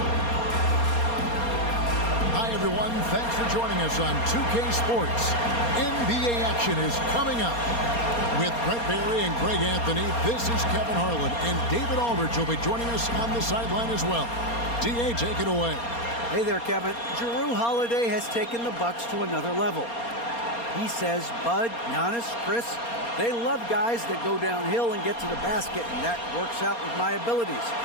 Hi everyone, thanks for joining us on 2K Sports. NBA action is coming up. With Brett Barry and Greg Anthony, this is Kevin Harlan, and David Aldridge will be joining us on the sideline as well. DA, take it away. Hey there, Kevin. Drew Holiday has taken the Bucks to another level. He says Bud, Giannis, Chris, they love guys that go downhill and get to the basket, and that works out with my abilities.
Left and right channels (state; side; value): late; right; 4.3 ms